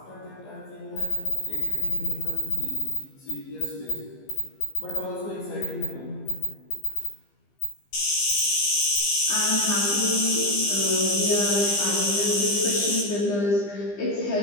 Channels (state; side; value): late; right; 15 ms